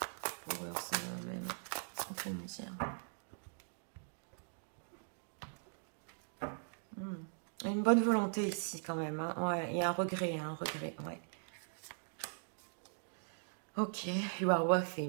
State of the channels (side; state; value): left; silent; digital silence